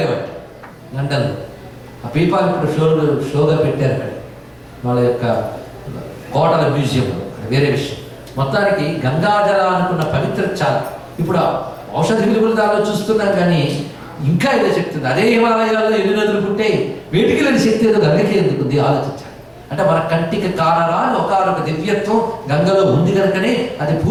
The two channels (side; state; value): both; identical; correlation 1.00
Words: లండన్లో. ఆ పీపాలు ఇప్పుడు షోగా పెట్టారు అక్కడ వాళ్ళ యొక్క కోటల మ్యూజియంలో. వేరే విషయం. మొత్తానికి గంగాజల అనుకున్న పవిత్రత చాలా. ఇప్పుడు ఔషధ విలువలు దానిలో చూస్తున్నాం, కానీ ఇంకా ఏదో శక్తి ఉంది. అదే హిమాలయాల్లో ఎన్ని నదులు పుట్టే వేటికి లేని శక్తి ఏదో గంగకి ఎందుకుంది ఆలోచించాలి. అంటే మన కంటికి కానరాని ఒకనొక దివ్యత్వం గంగలో ఉంది కనుకనే అది